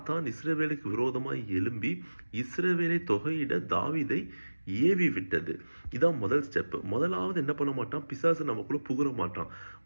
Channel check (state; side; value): inverted; both; correlation -1.00